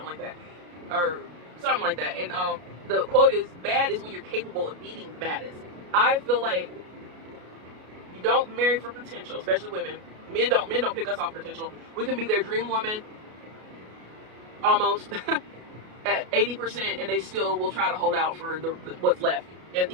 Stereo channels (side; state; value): left; late; 33 ms